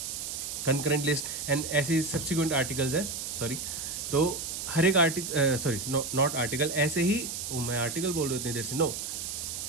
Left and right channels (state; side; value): noise; right; hiss, 5 dB below the sound